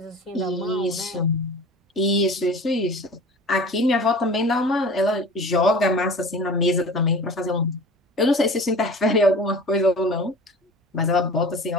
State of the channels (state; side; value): normal; both; correlation 0.40